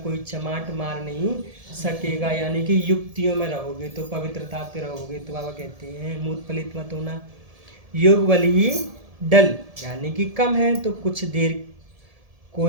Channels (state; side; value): late; left; 1.7 ms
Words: कोई चमाट मार नहीं सकेगा, यानी कि युक्तियों में रहोगे तो पवित्रता पे रहोगे। तो बाबा कहते हैं मूत पलित मत होना। योग बल ही डल यानी कि कम है, तो कुछ देर